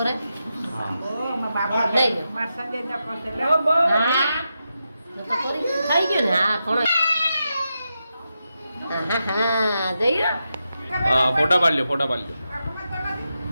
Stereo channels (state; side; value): inverted; both; correlation -0.88